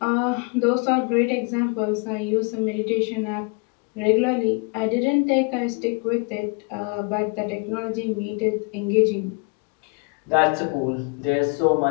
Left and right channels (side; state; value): right; quieter; 32.7 dB